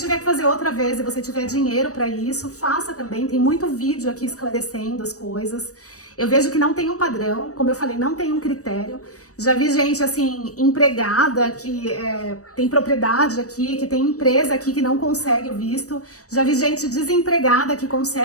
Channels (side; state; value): right; late; 0.66 ms